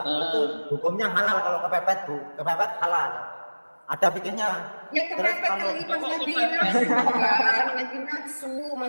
itu hukumnya halal kalau kepepet Bu, kepepet halal. Ada fikihnya. Ya kepepet lagi pas lagi nafsu kan, lagi nafsu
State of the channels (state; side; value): inverted; both; correlation -1.00